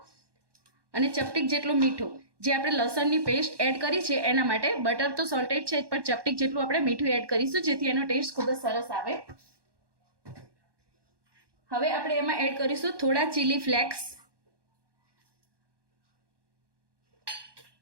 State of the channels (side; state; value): left; late; 1.1 ms